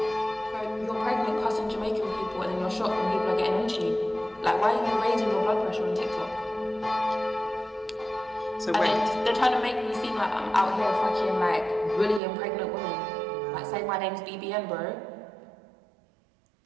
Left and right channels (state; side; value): drops out; left; at 12.2 s